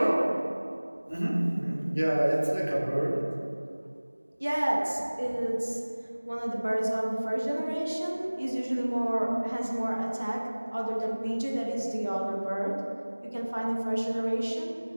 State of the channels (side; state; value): both; inverted; correlation -1.00